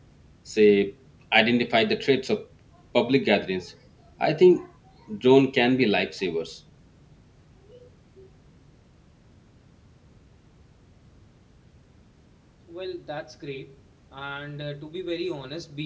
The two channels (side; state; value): both; identical; correlation 1.00